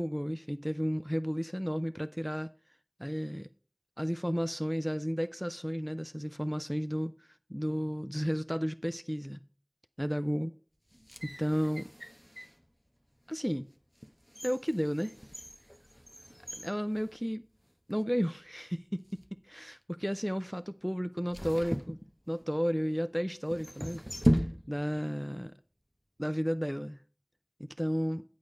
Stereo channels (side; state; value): both; identical; correlation 1.00